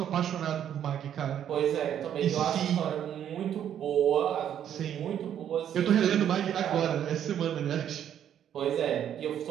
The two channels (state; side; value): quieter; left; 9.8 dB